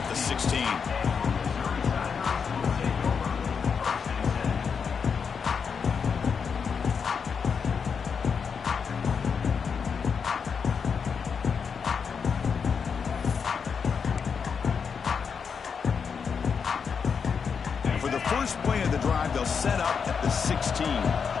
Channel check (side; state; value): right; quieter; 6.2 dB